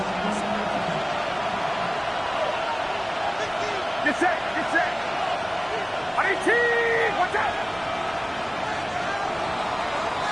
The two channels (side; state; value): both; identical; correlation 1.00